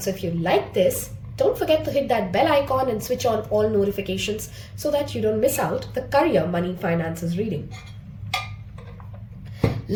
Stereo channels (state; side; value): identical; both; correlation 1.00